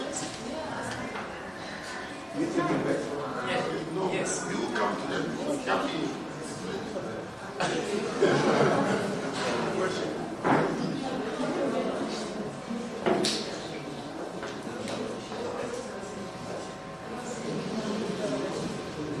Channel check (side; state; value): both; identical; correlation 1.00